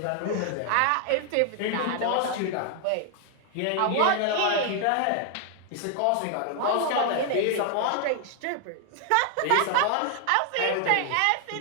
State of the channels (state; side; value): different; both; correlation 0.00